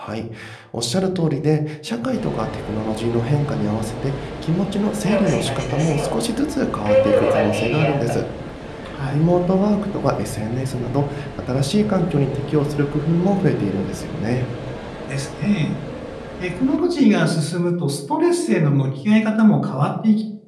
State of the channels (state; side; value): identical; both; correlation 1.00